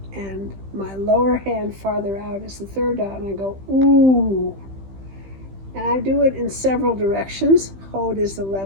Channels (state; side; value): late; left; 15 ms